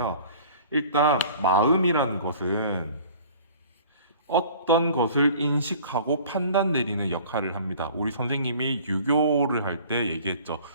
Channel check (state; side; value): inverted; both; correlation -0.47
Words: 일단 마음이라는 것은 어떤 것을 인식하고 판단 내리는 역할을 합니다. 우리 선생님이 유교를 할 때 얘기했죠.